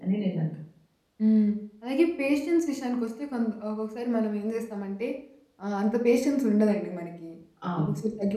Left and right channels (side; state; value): both; identical; correlation 1.00